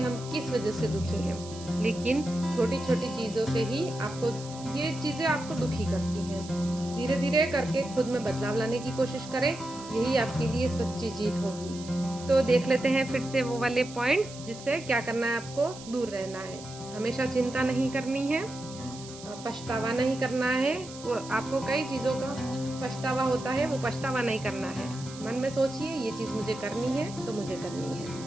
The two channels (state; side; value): noise; right; hiss, 16 dB below the sound